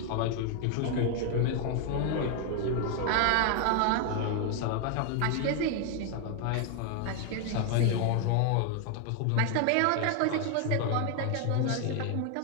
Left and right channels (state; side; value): different; both; correlation 0.00